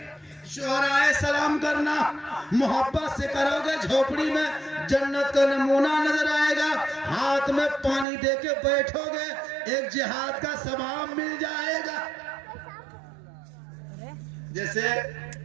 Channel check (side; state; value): left; drops out; at 8.1 s